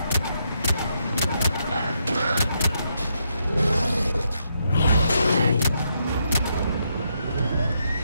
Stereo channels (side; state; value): both; inverted; correlation -0.79